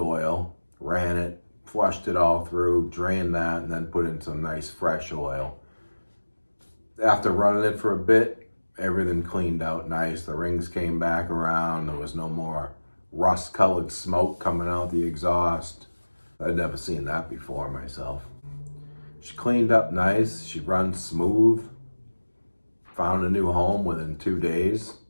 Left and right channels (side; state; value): both; inverted; correlation -1.00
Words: ran it, flushed it all through, drained that, and then put in some nice fresh oil. After running it for a bit, everything cleaned out nice. The rings came back around. There was no more rust-colored smoke coming out the exhaust. I'd never seen that before myself. She cleaned up nice. She runs smooth. Found a new home within 2 days.